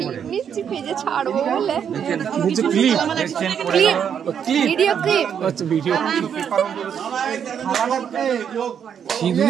নিচে পেজে ছাড়বো বলে নিচে ক্লিপ ভিডিও ক্লিপ। আচ্ছা ভিডিও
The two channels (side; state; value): left; quieter; 8.1 dB